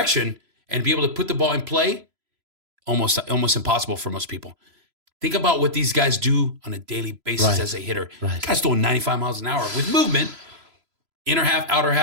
and be able to put the ball in play, almost impossible for most people. Think about what these guys do on a daily basis Right. as a hitter. Right. Guys throwing 95 miles an hour with movement, inner half, outer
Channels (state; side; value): late; left; 3.0 ms